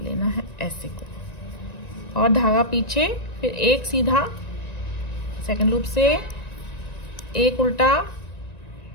है ऐसे को, और धागा पीछे, फिर एक सीधा सेकंड लूप से, एक उल्टा,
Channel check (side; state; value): right; late; 1.9 ms